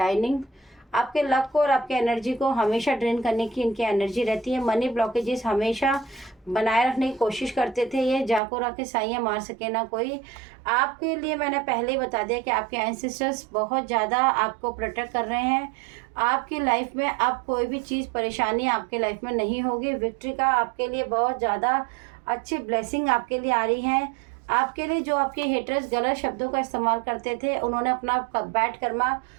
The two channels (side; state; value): left; drops out; at 8.4 s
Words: आपके लक को और आपके एनर्जी को हमेशा ड्रेन करने की इनकी एनर्जी रहती है। मनी ब्लॉकेजेस हमेशा बनाए रखने की कोशिश करते थे। ये जाको रखे साइयाँ मार सके ना कोई। आपके लिए मैंने पहले ही बता दिया कि आपके एंसेस्टर्स बहुत ज़्यादा आपको प्रोटेक्ट कर रहे हैं। आपकी लाइफ में अब कोई भी चीज़ परेशानी आपके लाइफ में नहीं होगी। विक्ट्री का आपके लिए बहुत ज़्यादा अच्छी ब्लेसिंग आपके लिए आ रही है। आपके लिए जो आपके हेटर्स गलत शब्दों का इस्तेमाल करते थे, उन्होंने अपना बैड कर्मा